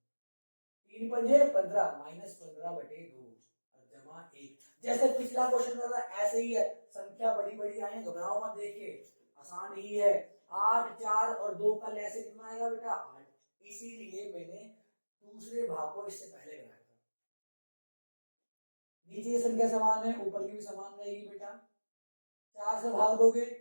3 पंजे 15 -15/2 और जमा 1। जैसे पिछला क्वेश्चन था ऐसे ही है, संख्या बड़ी बड़ी आई है, घबराओ मत, देख के आसान ही है। 8 4 और 2 का लैसे कितना आएगा बेटा 8, इसीलिए मैंने दूसरे भाग को इससे पहले कराया था। नीचे संख्या समान है, ऊपर की भी समान रहेगी बेटा। 4 से भाग दोगे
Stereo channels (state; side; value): inverted; both; correlation -1.00